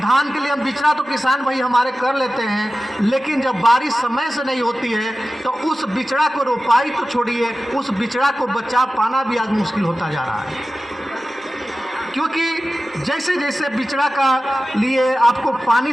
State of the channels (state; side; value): normal; both; correlation 0.95